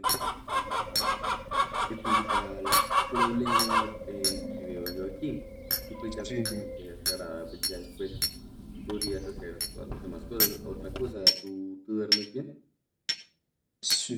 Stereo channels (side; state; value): both; identical; correlation 1.00